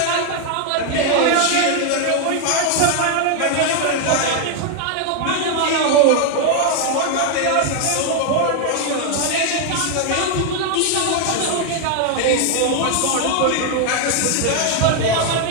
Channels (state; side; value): different; both; correlation 0.00